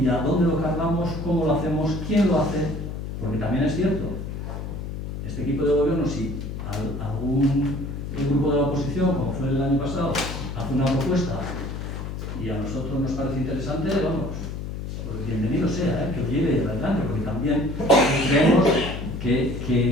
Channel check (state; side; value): noise; left; hum, 6 dB below the sound